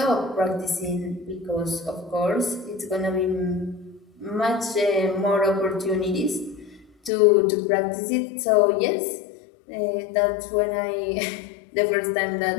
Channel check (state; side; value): drops out; right; at 7.1 s